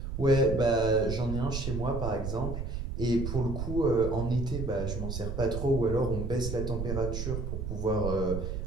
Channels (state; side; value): noise; right; rumble, 4 dB below the sound